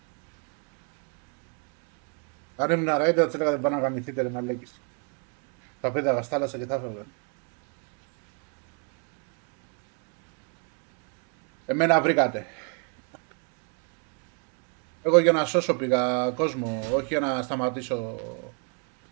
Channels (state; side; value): quieter; left; 39.8 dB